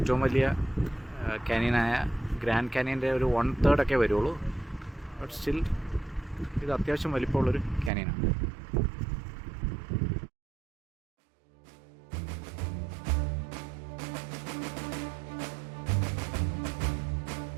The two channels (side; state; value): left; drops out; at 7.9 s